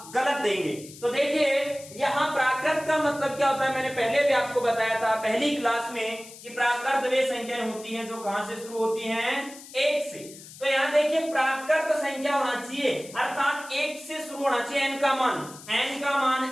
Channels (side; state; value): left; noise; hiss, 17 dB below the sound